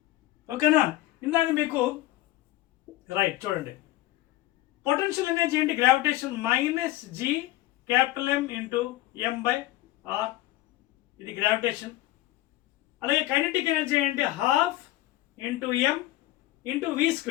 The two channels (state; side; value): quieter; right; 16.7 dB